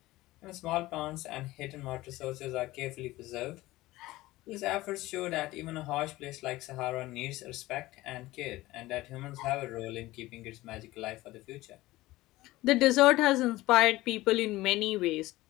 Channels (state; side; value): quieter; right; 18.2 dB